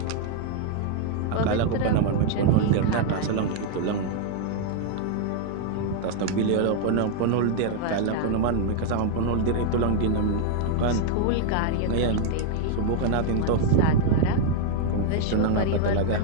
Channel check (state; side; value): different; both; correlation 0.00